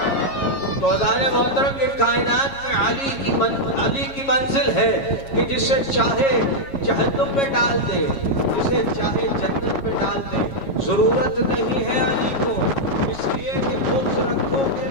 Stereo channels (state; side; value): late; right; 7.3 ms